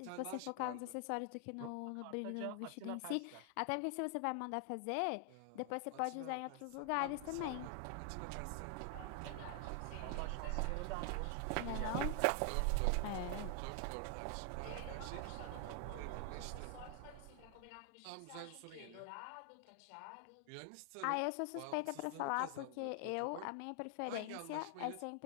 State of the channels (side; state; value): both; different; correlation 0.00